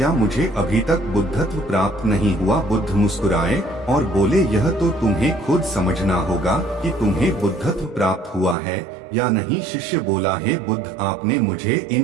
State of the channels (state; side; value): drops out; left; at 8.6 s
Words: मुझे अभी तक बुद्धत्व प्राप्त नहीं हुआ? बुद्ध मुस्कुराए और बोले, यह तो तुम्हें खुद समझना होगा कि तुम्हें बुद्धत्व प्राप्त हुआ है या नहीं। शिष्य बोला, हे बुद्ध, आपने मुझे